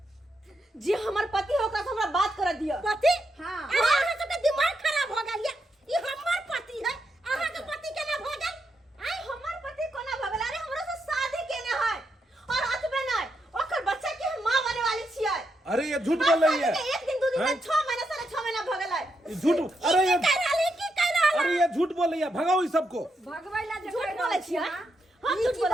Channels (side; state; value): both; normal; correlation 0.82